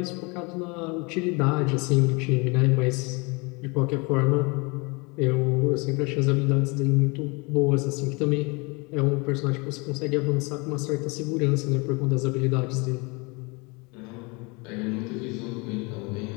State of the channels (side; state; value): right; quieter; 28.4 dB